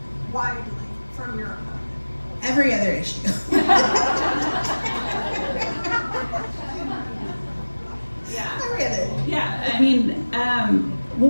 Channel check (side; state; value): both; inverted; correlation -1.00